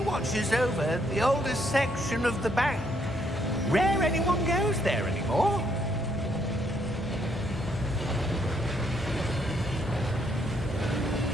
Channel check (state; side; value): normal; both; correlation 0.71